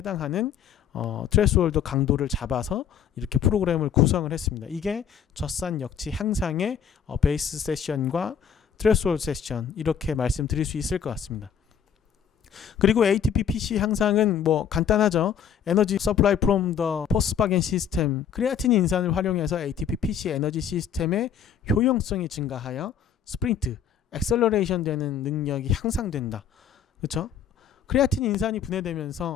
트레스홀드 강도를 잡아서 이렇게 프로그램을 구성을 했습니다. 이게 젖산 역치 향상의 베이스 세션과 트레스홀드 세션 이렇게 말씀드릴 수 있을 것 같습니다. 그리고 ATP PC 향상은 뭐 간단하죠. 에너지 서플라이 프롬 더 포스파겐 시스템 크레아틴 인산을 활용해서 ATP PC 에너지 시스템의 효용성이 증가하여 스프린트, 액셀러레이션 되는 능력이 향상된다. 그렇죠? 크레아틴 인산이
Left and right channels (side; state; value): right; quieter; 8.0 dB